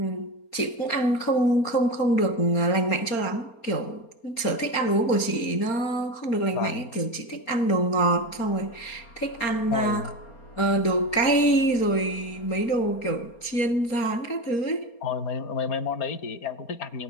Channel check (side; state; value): right; late; 4.3 ms